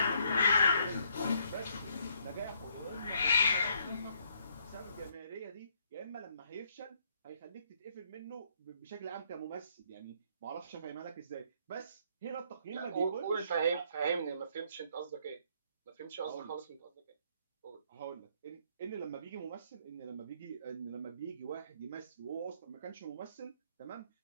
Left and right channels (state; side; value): inverted; both; correlation -0.69